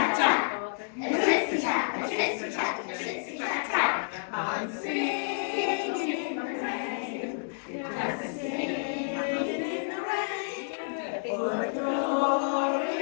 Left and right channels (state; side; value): silent; right; digital silence